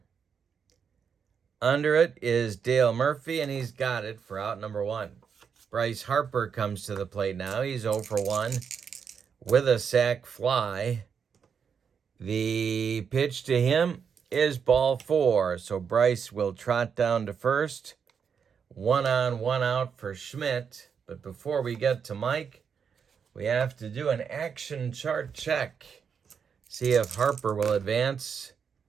Under it is Dale Murphy, and he's got it for out number 1. Bryce Harper comes to the plate now. He's 0 for 1 with a sac fly. The pitch to him is ball 4, so Bryce will trot down to first. 1 on, 1 out for Schmidt. But before we get to Mike, we have to do an action chart check. See if Harper will advance.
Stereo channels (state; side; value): quieter; left; 6.8 dB